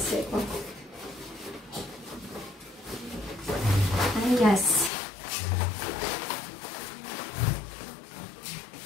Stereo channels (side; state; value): right; drops out; at 4.9 s